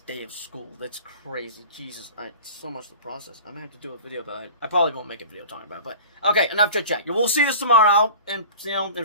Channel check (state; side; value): inverted; both; correlation -0.39